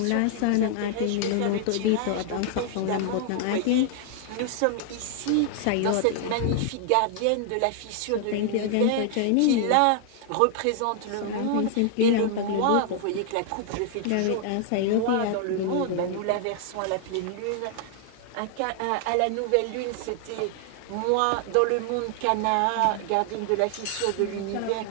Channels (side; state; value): both; different; correlation 0.00